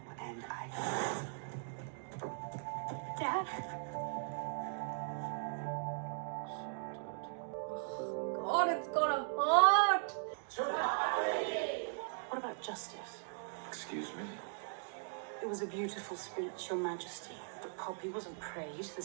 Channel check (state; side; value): silent; left; digital silence